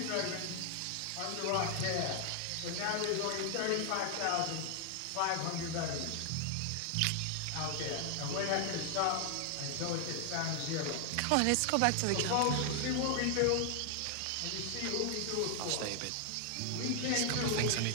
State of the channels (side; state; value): both; different; correlation 0.00